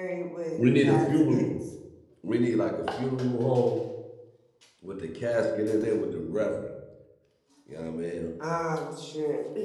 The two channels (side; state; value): both; identical; correlation 1.00